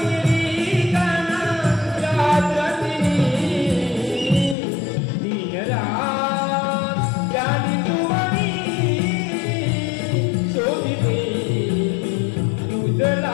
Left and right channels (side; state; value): right; drops out; at 4.5 s